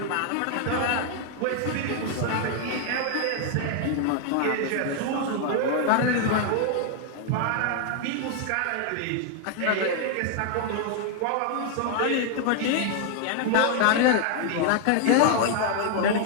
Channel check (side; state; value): both; different; correlation 0.00